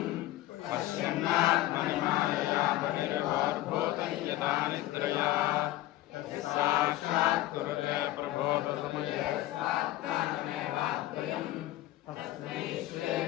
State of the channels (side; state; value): right; quieter; 15.8 dB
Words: पश्यन्नात्मनिमायया बहिर्वाद्भूतं यथा निद्रया साक्षात् कुरुते प्रबोधसमये स्वात्मानमेवाद्वयम् तस्मै श्री